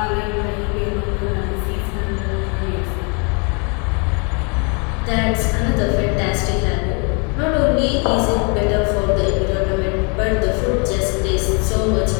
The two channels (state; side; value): quieter; right; 35.2 dB